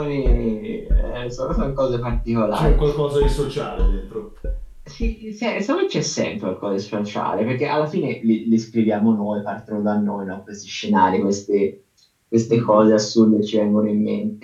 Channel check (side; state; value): both; identical; correlation 1.00